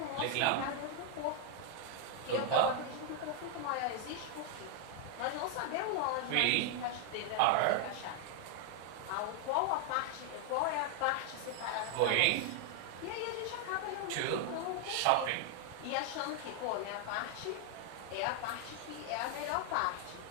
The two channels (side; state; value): both; different; correlation 0.00